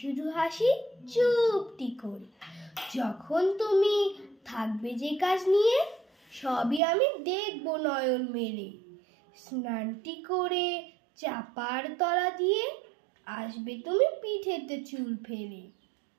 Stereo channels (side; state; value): left; drops out; at 6.8 s